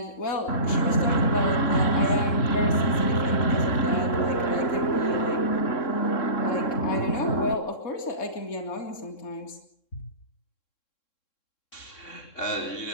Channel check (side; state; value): right; late; 3.7 ms